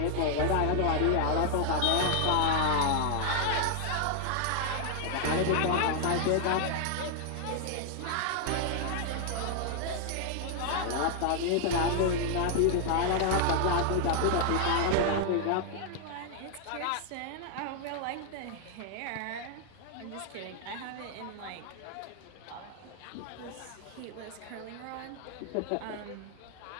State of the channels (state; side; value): different; both; correlation 0.00